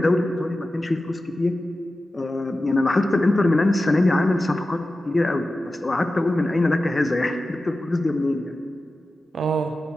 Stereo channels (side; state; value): both; normal; correlation 0.94